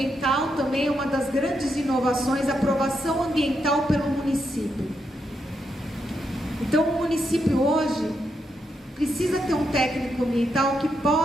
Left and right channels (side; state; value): both; normal; correlation 0.82